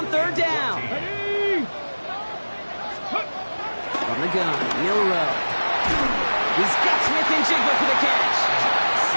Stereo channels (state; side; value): inverted; both; correlation -1.00